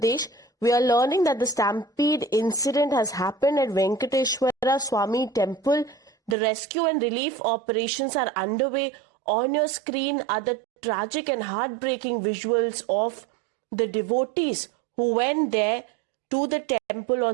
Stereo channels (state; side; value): drops out; left; at 6.4 s